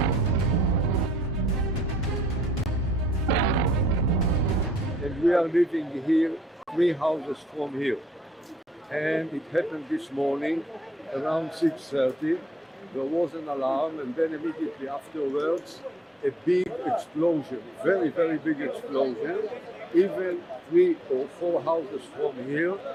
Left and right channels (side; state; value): both; normal; correlation 0.68